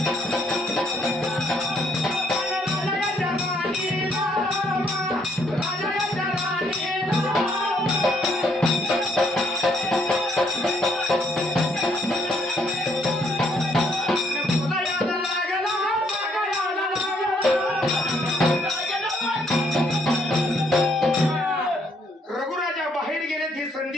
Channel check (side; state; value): both; normal; correlation 0.69